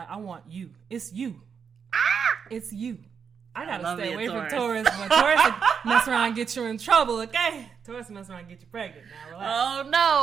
I want you. It's you. It's you. I gotta love stay me a away from Taurus. Taurus. When Taurus will mess around and get you in trouble, okay? Taurus mess around and get you pregnant. Now relax. Oh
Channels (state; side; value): quieter; left; 6.7 dB